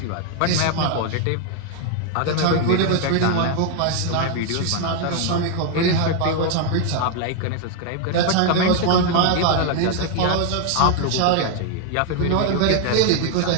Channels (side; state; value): both; different; correlation 0.00